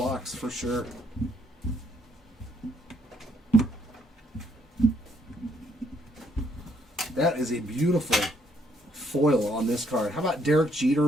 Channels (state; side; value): normal; both; correlation 0.70